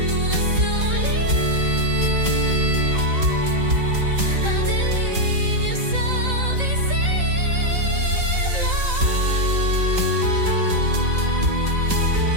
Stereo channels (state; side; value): late; left; 3.8 ms